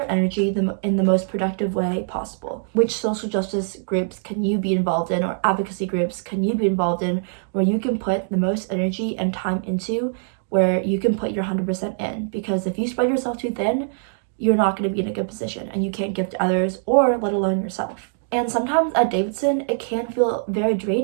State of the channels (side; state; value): left; silent; digital silence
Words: energy in the most productive way possible. Which social justice groups can you be involved in, or advocacy groups can you be involved in, where you can put the most energy and time into, where you can put your 100% in? Because if you spread yourself too thin, you're not going to be in a good position, and you can't give to others, or let alone yourself. And sometimes at Davidson, it can feel very